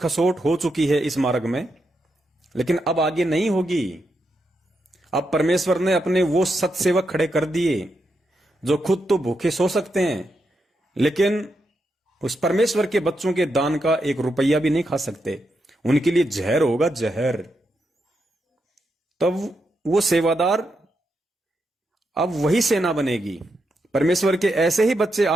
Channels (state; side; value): normal; both; correlation 0.84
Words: हो चुकी है इस मार्ग में, लेकिन अब आगे नहीं होगी। अब परमेश्वर ने अपने वो सत्सेवक खड़े कर दिए जो खुद तो भूखे सो सकते हैं, लेकिन उस परमेश्वर के बच्चों के दान का 1 रुपया भी नहीं खा सकते। उनके लिए जहर होगा, जहर। तब वो सेवादार, अब वही सेना बनेगी। परमेश्वर के ऐसे ही बच्चे